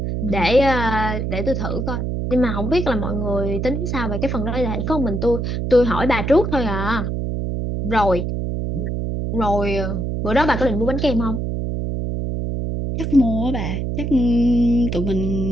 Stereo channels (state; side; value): noise; right; hum, 2 dB below the sound